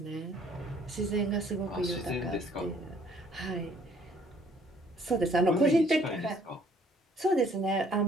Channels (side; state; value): both; normal; correlation 0.61